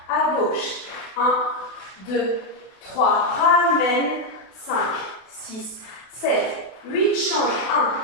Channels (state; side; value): late; right; 32 ms